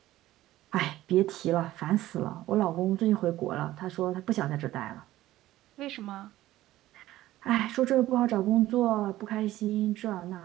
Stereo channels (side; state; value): left; quieter; 15.3 dB